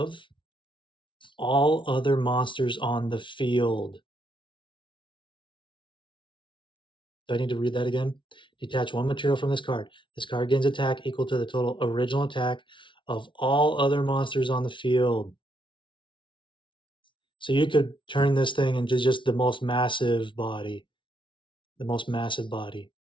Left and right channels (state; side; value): late; right; 0.24 ms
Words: all other monsters on the field. Do I need to read that again? Detach 1 material from this card. This card gains attack equal to the total original attack of all other monsters on the field. So you could turn this thing into just the most massive body. The most massive body.